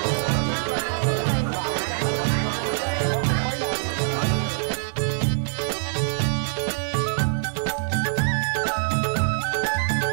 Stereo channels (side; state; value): left; silent; 58 dB below the other